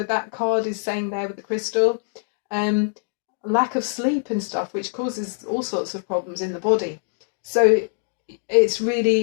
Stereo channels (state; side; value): silent; right; digital silence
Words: that card is saying there with the crystal. Lack of sleep and stuff, which causes all sorts of problems in the body. So it's